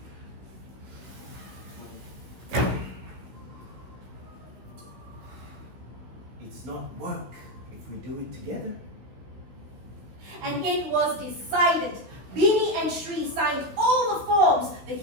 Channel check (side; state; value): left; late; 16 ms